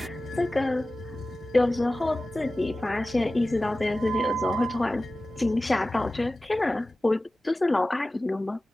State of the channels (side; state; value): both; normal; correlation 0.96